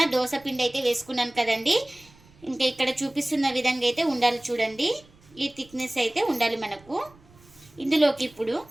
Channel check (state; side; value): noise; right; rumble, 27 dB below the sound